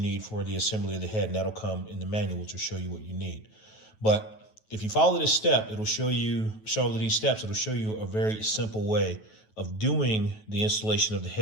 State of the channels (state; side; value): late; right; 9.2 ms